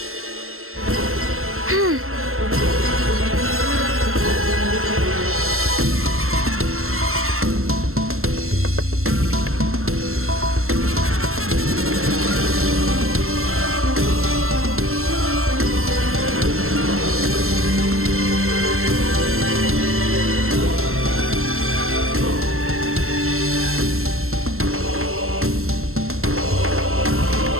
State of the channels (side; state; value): left; late; 0.62 ms